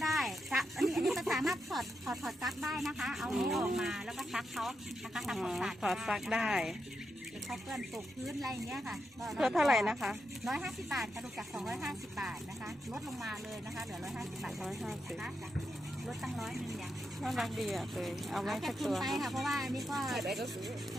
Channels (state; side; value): normal; both; correlation 0.85